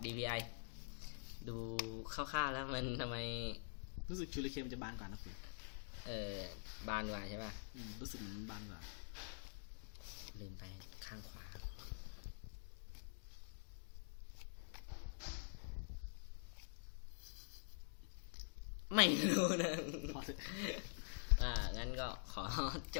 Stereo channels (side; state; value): right; silent; digital silence